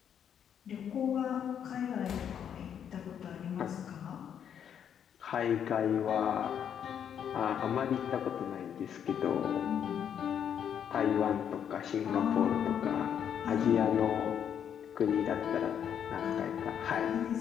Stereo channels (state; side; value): quieter; right; 8.6 dB